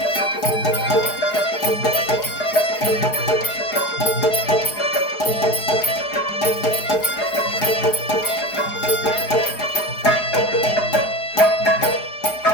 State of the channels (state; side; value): late; right; 4.8 ms